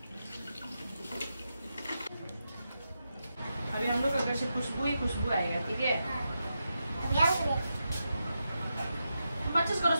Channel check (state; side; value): inverted; both; correlation -0.87